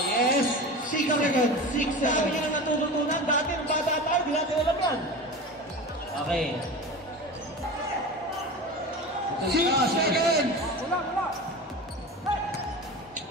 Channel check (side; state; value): both; normal; correlation 0.30